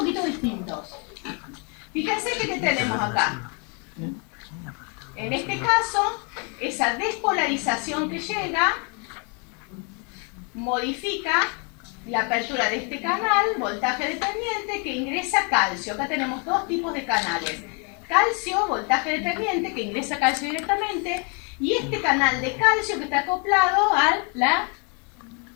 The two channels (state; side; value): quieter; right; 35.6 dB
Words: distintos. Fíjense que ¿qué tenemos acá? En este caso, esa despolarización que llega modifica la apertura de este canal, voltaje dependiente, que ingresa calcio. Acá tenemos dos tipos de canales. Calcio, voltaje dependiente, que ingresa calcio directamente, y este canal de calcio que está acoplado a la...